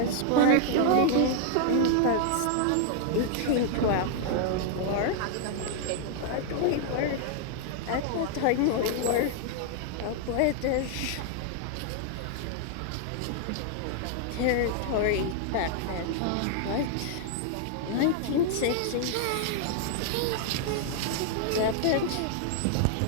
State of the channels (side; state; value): both; different; correlation 0.00